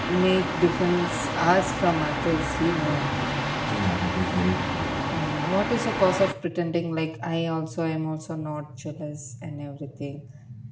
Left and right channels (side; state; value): both; identical; correlation 1.00